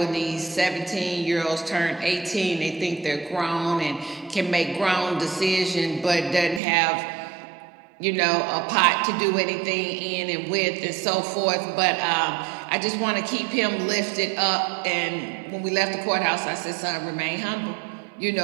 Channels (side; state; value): left; drops out; at 6.6 s